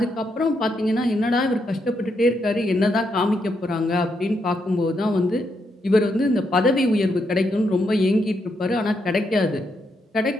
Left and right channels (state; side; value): normal; both; correlation 0.79